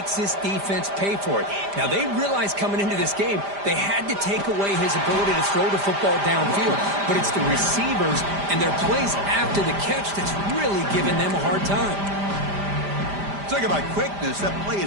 this defense pay for it. Now, they realized coming into this game they had to take away his ability to throw the football downfield. But it's the receivers and their plays after the catch that's really giving them a hard time. Talk about quickness. That play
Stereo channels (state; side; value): late; left; 5.0 ms